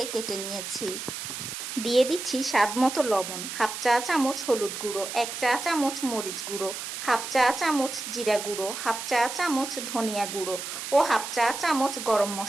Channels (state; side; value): noise; right; hiss, 7 dB below the sound